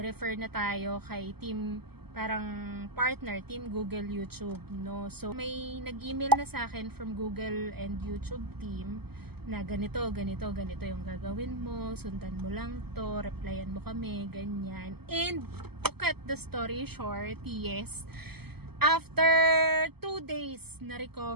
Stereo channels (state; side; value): late; left; 0.96 ms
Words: na tayo kay Team, parang partner, Team Google YouTube, no? So, may nag-email na sa akin from Google and YouTube team na ganito yung gagawin mo, sundan mo lang to, replyan mo kami, ganyan. And, to cut the story short, yes, after 2 days